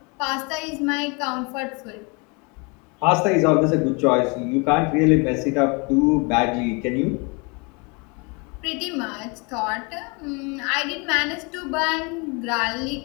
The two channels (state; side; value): quieter; right; 30.6 dB